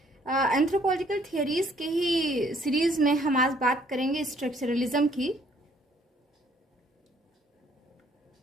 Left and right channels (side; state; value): both; normal; correlation 0.63